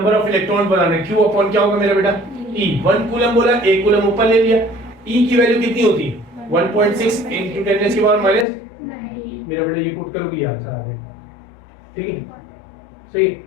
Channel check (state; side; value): drops out; right; at 8.5 s